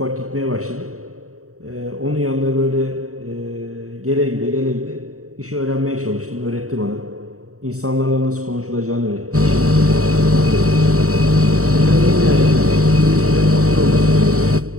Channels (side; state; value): left; late; 0.65 ms